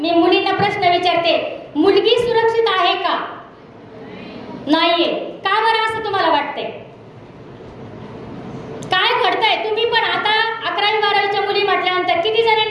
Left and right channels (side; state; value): both; identical; correlation 1.00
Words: मुलींना प्रश्न विचारते, मुलगी सुरक्षित आहे का? नाहीये. का बरं असं तुम्हाला वाटतंय? काय घडतंय? तुम्ही पण आता 11वी 12वीच्या मुली म्हटल्यानंतर किती